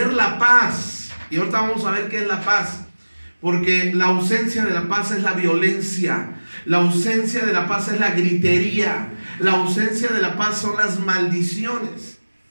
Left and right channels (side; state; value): both; inverted; correlation -1.00